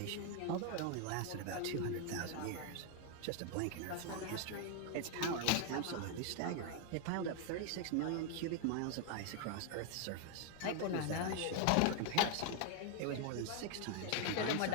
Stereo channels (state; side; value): different; both; correlation 0.00